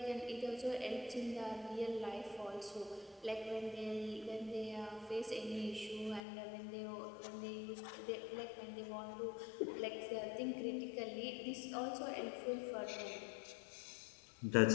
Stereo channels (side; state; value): right; drops out; at 6.2 s